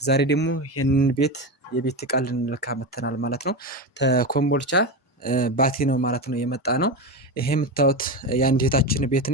ዛሬ ደግሞ ይህንን የቤት ዕቃ ልንለካ መተናል ማለት ነው። ተኮምቦልቻ ባቲ ነው ማለት ነው የመጣ ነው። ይሄ የምታዩት የአንድ እህታችን ቤት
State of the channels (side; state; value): both; normal; correlation 0.18